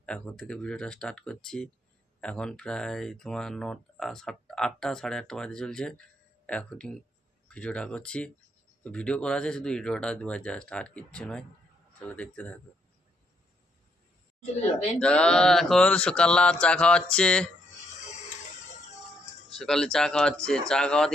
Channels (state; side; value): normal; both; correlation 0.74